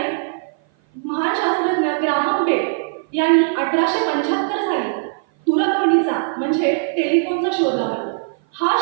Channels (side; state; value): left; silent; 56 dB below the other